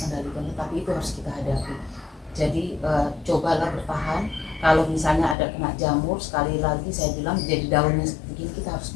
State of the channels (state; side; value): drops out; right; at 5.4 s